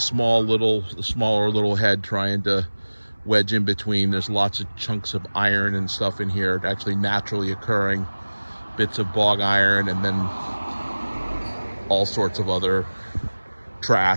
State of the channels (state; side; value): inverted; both; correlation -1.00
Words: little head, trying to wedge in between. There's lots of chunks of iron and stuff in here, actually naturally occurring bits of bog iron, and then all sorts of other